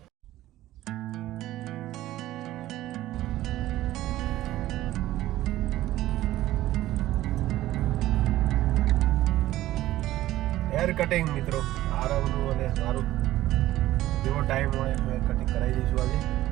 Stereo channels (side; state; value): left; quieter; 15.1 dB